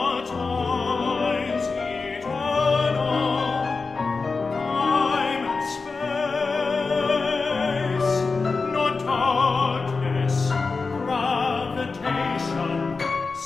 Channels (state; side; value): quieter; right; 4.3 dB